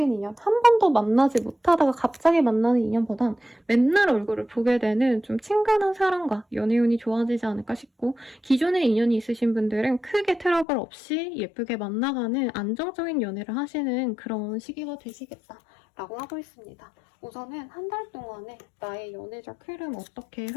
인연, 한 번도 만나지 못하다가 갑자기 만나는 인연보단 맨날 얼굴을 보게 되는 좀 친근한 사람과 연애운이 좋아지지 않을까 싶고 기존에 인연이 있으신 분들은 크게 트러블 없이 예쁘게 만나가는 안정적인 연애를 하시는 그런 시기가 되시겠다 라고 하고 있습니다. 우선은 한 달 동안에 나의 연애적 흐름 어떻게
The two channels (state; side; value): drops out; right; at 10.7 s